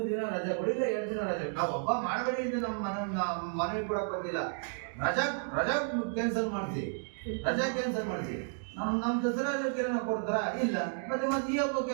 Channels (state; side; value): silent; left; 56 dB below the other